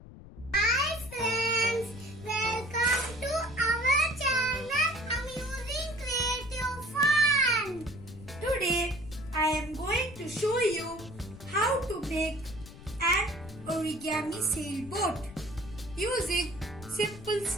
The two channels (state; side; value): noise; left; rumble, 16 dB below the sound